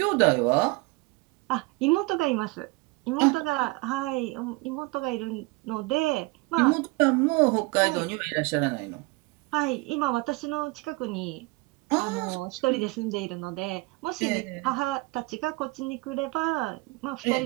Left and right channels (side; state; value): left; quieter; 24.4 dB